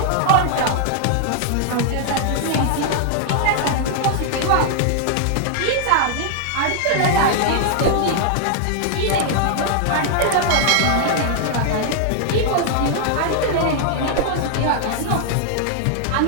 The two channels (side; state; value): both; different; correlation -0.01